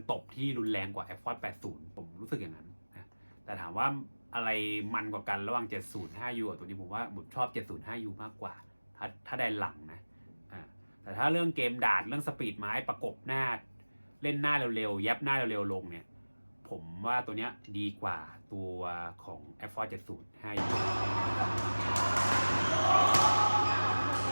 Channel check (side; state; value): both; inverted; correlation -1.00